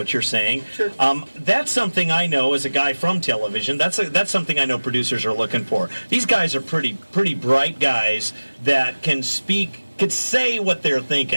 you're saying. Sure. That's something I know as a guy from television. That's something I know producers are looking for. These guys are pretty bright guys that can say what they're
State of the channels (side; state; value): both; inverted; correlation -1.00